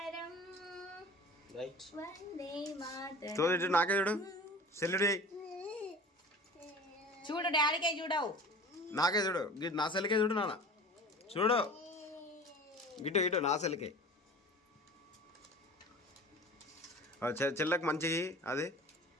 వందే మాతరం. నాకే చూడు, సెల్లుడి చూడు, డాడీకే చూడవు, నాకే చూడు, నా సెల్కే చూడు, నాన్న చూడు, ఇటు నా సెల్కే. చెల్లకు మంచిగా అది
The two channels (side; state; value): both; normal; correlation 0.40